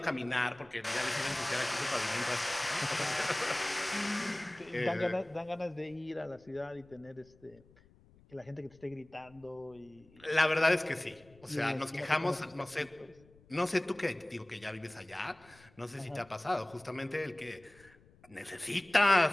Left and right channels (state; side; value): noise; left; rumble, 27 dB below the sound